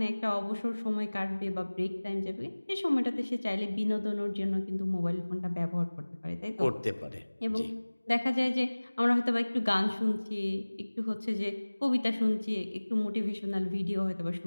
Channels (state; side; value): inverted; both; correlation -1.00